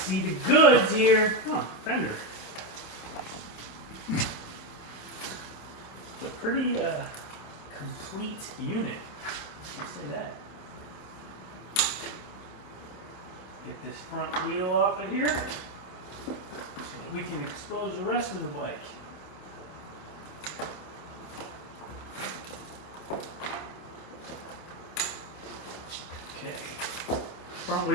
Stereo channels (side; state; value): right; late; 27 ms